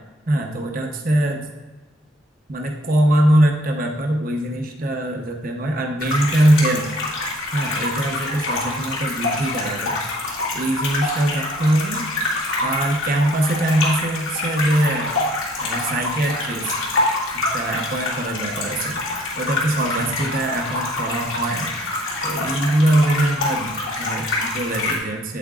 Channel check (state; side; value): normal; both; correlation 0.60